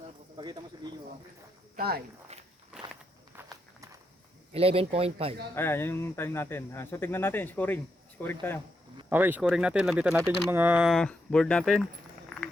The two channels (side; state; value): both; normal; correlation 0.82